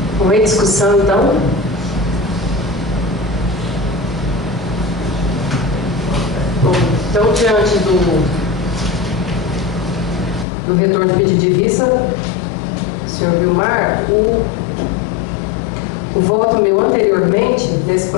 Em discussão, então? Então, diante do retorno de pedido de vista, senhor Vilmar, o voto meu anteriormente, nesse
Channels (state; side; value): drops out; right; at 10.5 s